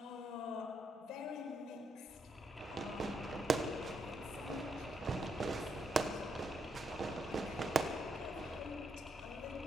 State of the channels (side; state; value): both; normal; correlation 0.78